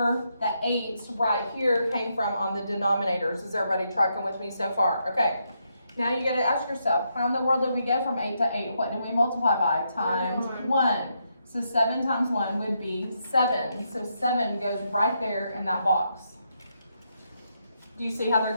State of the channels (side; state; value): both; inverted; correlation -0.80